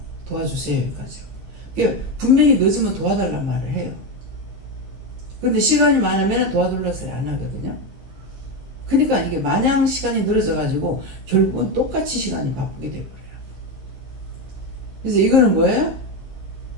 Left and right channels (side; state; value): left; late; 15 ms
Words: 도와주세요. 여기까지. 그러니까 분명히 늦으면 도와달란 말을 해요. 근데 시간이 많으면 도와달라는 소리 안 하거든요. 그러니까 이게 마냥 시간이 늘어져 가지고 결국은 똑같이 시간이 바쁘게 돼버려요. 그래서 이거는 뭐예요?